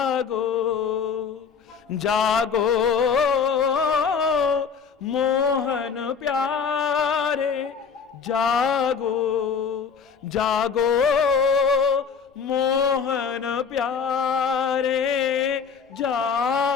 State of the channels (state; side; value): quieter; right; 6.1 dB